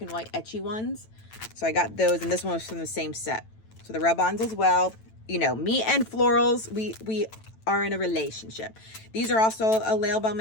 and white etchy ones. So I got those, and this one was from the same set. So the rub-ons as well. You know, me and florals, we are in a relationship. These are also a Layle by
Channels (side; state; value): right; late; 9.0 ms